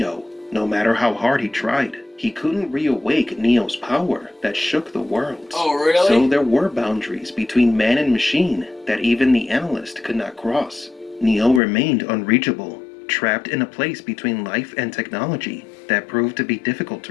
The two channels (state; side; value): drops out; right; at 11.6 s